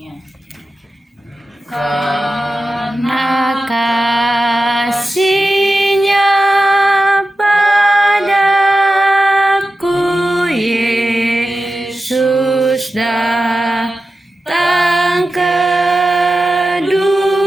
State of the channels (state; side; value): normal; both; correlation 0.92